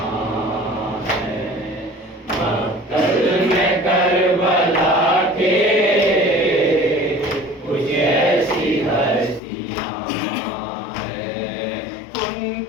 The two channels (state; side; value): drops out; right; at 9.4 s